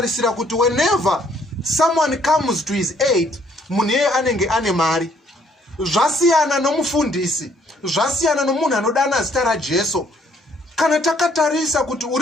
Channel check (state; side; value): normal; both; correlation 0.65